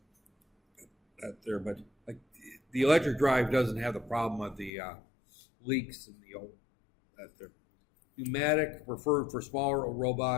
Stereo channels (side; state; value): right; drops out; at 4.7 s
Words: But like the electric drive doesn't have the problem of the leaks in the old that there. Pneumatic preferred for smaller